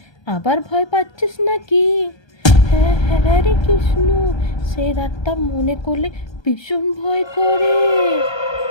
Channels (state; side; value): late; right; 1.3 ms